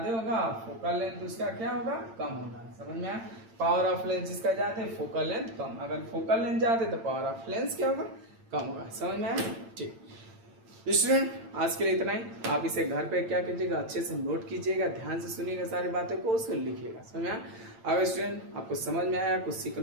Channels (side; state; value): left; late; 8.8 ms